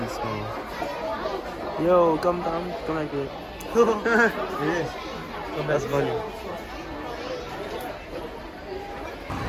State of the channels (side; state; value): both; identical; correlation 1.00